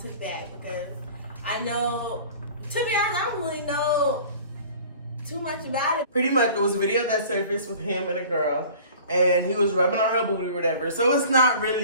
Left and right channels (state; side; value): inverted; both; correlation -0.45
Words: back because I know, to be honest, I don't really know too much about it. Pretty much, it was a video that surfaced with him and a girl, and he was rubbing on her booty or whatever. So it's not